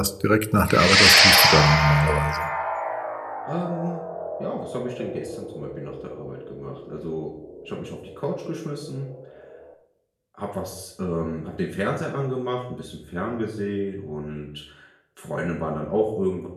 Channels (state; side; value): identical; both; correlation 1.00